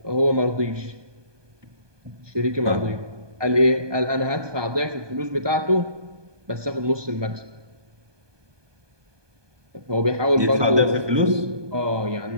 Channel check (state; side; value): late; left; 1.2 ms